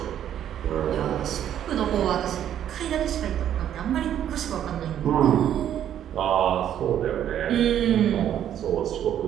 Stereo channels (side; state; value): left; quieter; 10.4 dB